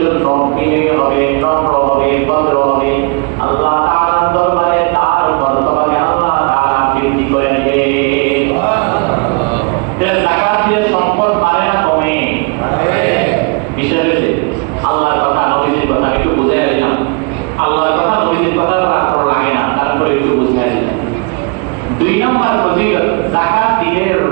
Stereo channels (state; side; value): quieter; left; 31.8 dB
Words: জন্য বিনয়ী হবে, নম্র হবে, ভদ্র হবে, আল্লাহ তাআলার দরবারে তার মর্যাদাকে আল্লাহ তাআলা বৃদ্ধি করে দিবে। যাকাত দিয়ে সম্পদ বাড়ে না কমে? বিষয় হচ্ছে আল্লাহর কথা, নবীজির কথা একটু বুঝাই দিলাম। আল্লাহর কথা নবীজির কথা আপনার লাগে না, তারপরে একটু বুঝাই দিলাম। 2 নম্বর ফজিলত, যাকাত দিলে